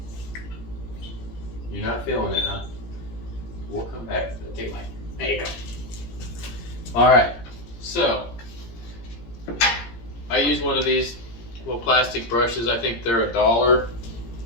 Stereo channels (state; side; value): late; right; 17 ms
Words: You're not feeling it, huh? We'll come back to it. Take a bite. There you go. Alright, so I use one of these little plastic brushes. I think they're $1